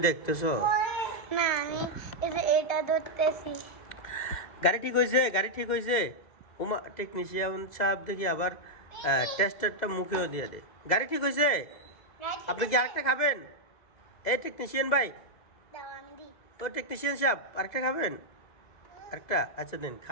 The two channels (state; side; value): late; right; 2.0 ms